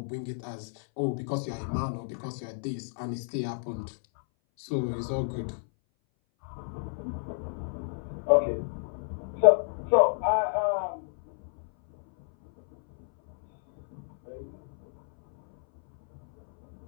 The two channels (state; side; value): silent; right; 58 dB below the other